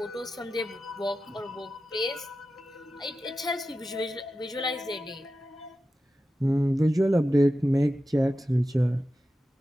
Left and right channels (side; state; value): both; normal; correlation 0.92